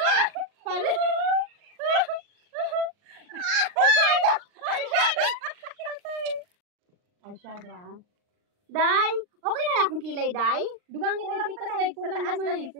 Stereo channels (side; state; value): left; late; 39 ms